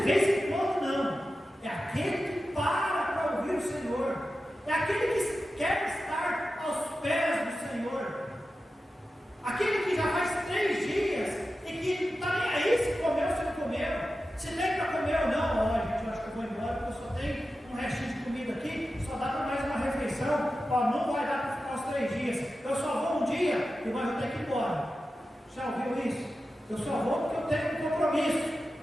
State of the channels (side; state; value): both; normal; correlation 0.93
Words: vez em quando, não, é aquele que para ouvir o Senhor, é aquele que quer estar aos pés do Senhor, aquele que já faz 3 dias e que não está nem aí se comeu ou se não comeu, se tem para comer ou não. Olha, gente, eu acho que eu vou embora porque eu só tenho um restinho de comida aqui, só dá para mais uma refeição. Ó, não vai dar para ficar os 3 dias, eu só vou um dia e mas eu tenho que ir embora. Já ouviu isso? Eu só vou porque eu tenho um compromisso,